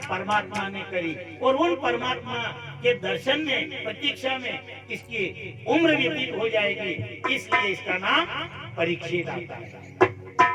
परमात्मा ने करी और उन परमात्मा के दर्शन में, प्रतीक्षा में इसकी उम्र व्यतीत हो जाएगी, इसलिए इसका नाम परीक्षित आता है।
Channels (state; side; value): identical; both; correlation 1.00